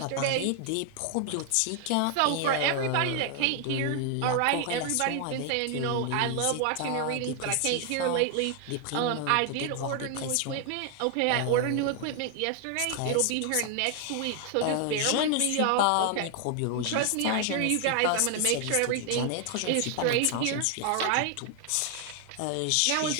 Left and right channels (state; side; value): different; both; correlation 0.00